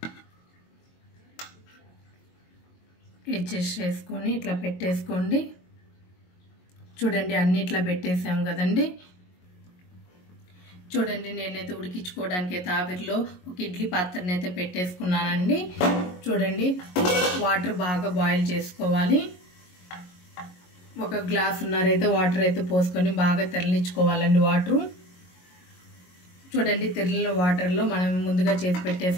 అడ్జస్ట్ చేసుకొని ఇట్లా పెట్టేసుకోండి. చూడండి అన్ని ఇట్లా పెట్టేసాం కదండి. చూడండి నేనైతే ఉడికించుకోవడానికి అయితే ఆవిరిలో ఒక ఇడ్లీ పాత్రని అయితే పెట్టేసుకున్నానండి. చూడండి వాటర్ బాగా బాయిల్ చేసుకోవాలి. 1 గ్లాసున్నర అయితే వాటర్ అయితే పోసుకొని బాగా తెరలించుకోవాలండి వాటరు. చూడండి తెరలిన వాటర్లో మనం ముందుగా చేసి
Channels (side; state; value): right; late; 22 ms